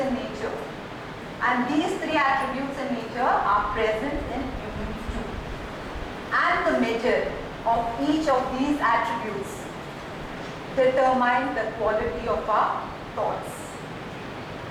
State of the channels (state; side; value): identical; both; correlation 1.00